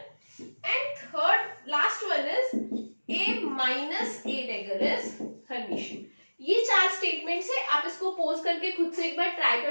Minus A dagger is Hermitian. ये 4 स्टेटमेंट्स है, आप इसको पोज करके खुद से एक बार ट्राई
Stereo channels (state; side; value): inverted; both; correlation -1.00